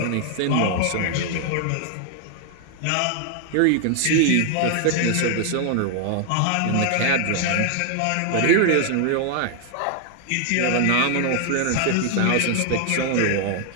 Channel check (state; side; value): different; both; correlation 0.00